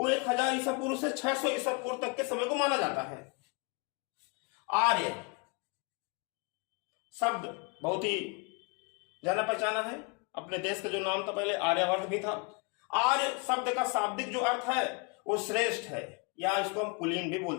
1000 ईसा पूर्व से 600 ईसा पूर्व तक के समय को माना जाता है। आर्य शब्द बहुत ही जाना पहचाना है। अपने देश का जो नाम था पहले आर्यवर्त भी था। आर्य शब्द का शाब्दिक जो अर्थ है वो श्रेष्ठ है, या इसको हम कुलीन भी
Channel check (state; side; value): quieter; right; 32.5 dB